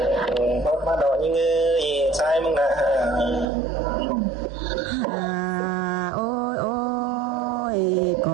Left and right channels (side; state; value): left; drops out; at 3.5 s